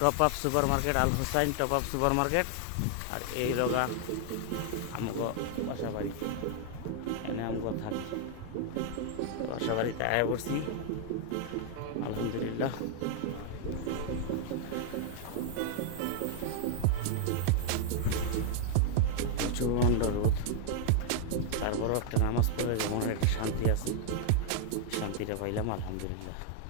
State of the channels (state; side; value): different; both; correlation 0.00